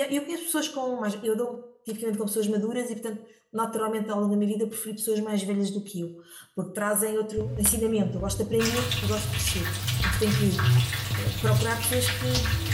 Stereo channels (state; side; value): identical; both; correlation 1.00